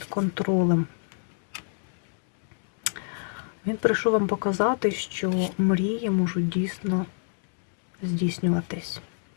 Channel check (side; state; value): right; silent; digital silence